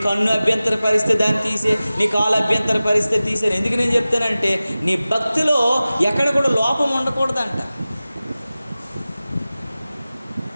కన్ను అభ్యంతర పరిస్థితి దాన్ని తీసే, నీ కాలు అభ్యంతర పరిస్థితి తీసే. ఎందుకు నేను చెప్తానంటే నీ భక్తిలో ఎక్కడ కూడా లోపం ఉండకూడదంట.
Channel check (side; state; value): both; inverted; correlation -0.96